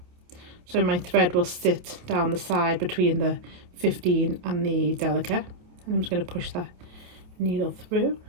So my thread will sit down the side between the 15 and the Delica. And I'm just going to push that needle through,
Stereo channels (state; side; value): late; left; 28 ms